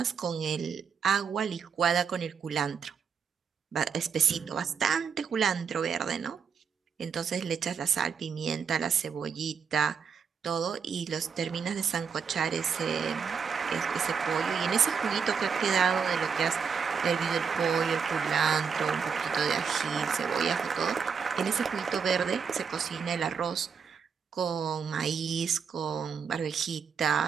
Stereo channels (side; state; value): left; quieter; 6.4 dB